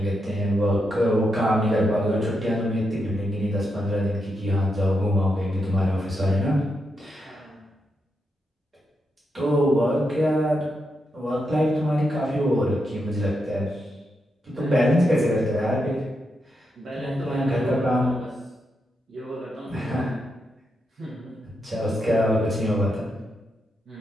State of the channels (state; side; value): normal; both; correlation 0.84